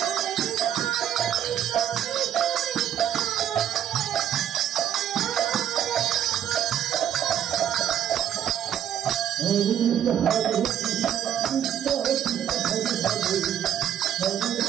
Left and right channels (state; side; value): quieter; left; 10.0 dB